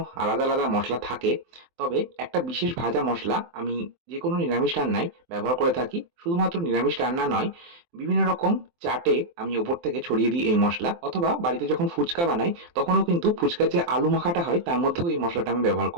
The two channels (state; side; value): late; left; 23 ms